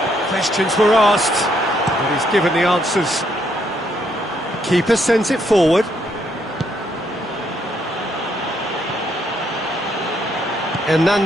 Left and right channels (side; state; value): both; normal; correlation 0.72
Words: Questions were asked, but he's given the answers. Keeper sends it forward.